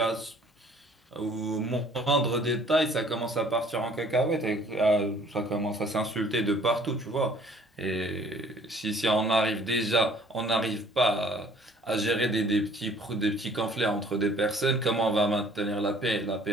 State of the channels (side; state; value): both; normal; correlation 0.55